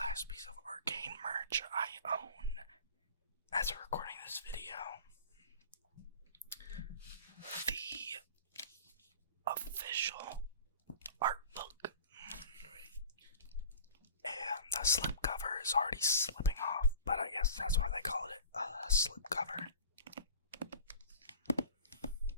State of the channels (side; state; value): both; inverted; correlation -0.42